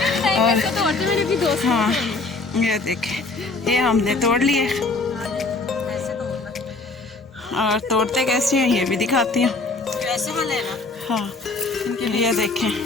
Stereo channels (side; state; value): right; quieter; 3.6 dB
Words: और हाँ, ये देखें ये हमने तोड़ लिए और तोड़ते कैसे हैं ये भी दिखाती हूँ। कैसे वाले ना? हाँ, ये देखें